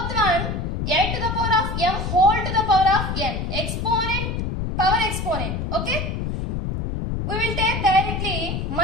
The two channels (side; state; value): left; noise; rumble, 3 dB below the sound